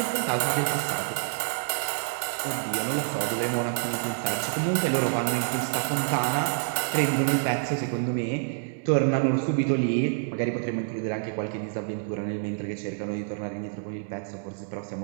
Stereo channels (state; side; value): silent; left; digital silence